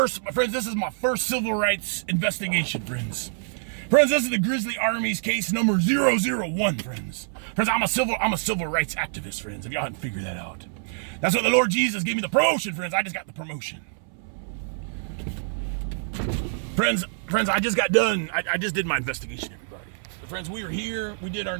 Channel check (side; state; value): left; silent; 59 dB below the other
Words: this is my first civil rights investigation, friends. Friends, this is the Grizzly Army's case number 001, friends. Friends, I'm a civil rights activist, friends, if y'all hadn't figured that out. That's what the Lord Jesus gave me the promotion, friends. I just got the promotion. Friends, I just got done. I just did my investigation, everybody. Friends, we were here. We did our